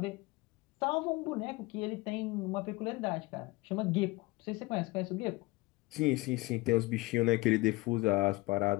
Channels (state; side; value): quieter; right; 22.0 dB